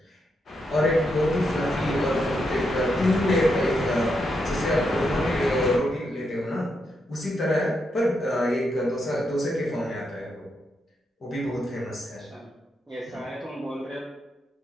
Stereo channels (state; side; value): normal; both; correlation 0.82